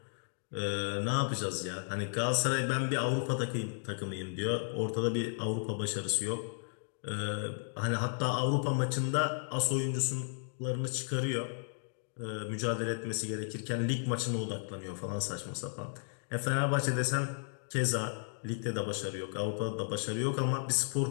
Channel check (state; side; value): silent; right; digital silence